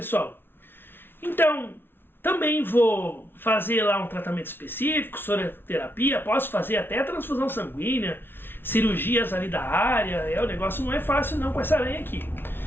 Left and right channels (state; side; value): late; right; 0.11 ms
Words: Então, também vou fazer lá um tratamento específico, soroterapia, posso fazer até transfusão sanguínea, cirurgias ali da área. O negócio não é fácil não com essa aranha aqui.